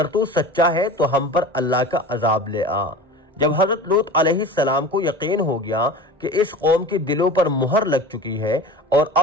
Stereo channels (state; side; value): normal; both; correlation 0.35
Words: تو سچا ہے تو ہم پر اللہ کا عذاب لے آ۔ جب حضرت لوط علیہ السلام کو یقین ہو گیا کہ اس قوم کے دلوں پر مہر لگ چکی ہے اور